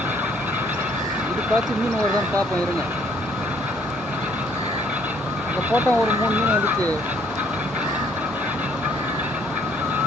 இதுக்காச்சும் மீன் வருதான்னு பார்ப்போம் இருங்க. அங்கே போட்டோம் ஒரு 3 மீன் வந்துச்சு.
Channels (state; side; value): normal; both; correlation 0.62